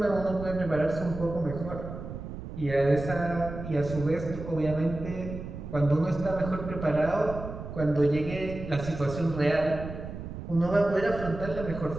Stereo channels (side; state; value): right; noise; rumble, 9 dB below the sound